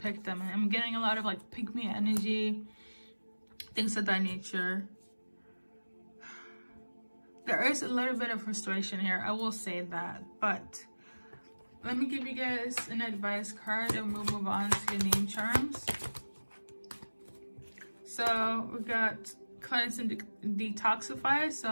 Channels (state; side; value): inverted; both; correlation -1.00